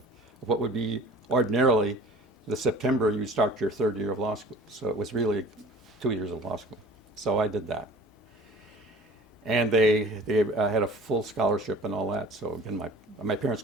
what would be ordinarily the September you start your 3rd year of law school. So it was really 2 years of law school. So I did that. And they had a full scholarship and all that. So again, my parents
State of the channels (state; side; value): normal; both; correlation 0.44